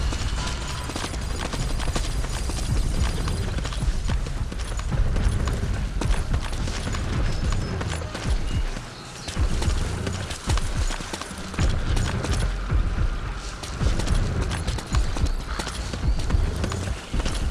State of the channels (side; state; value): both; identical; correlation 1.00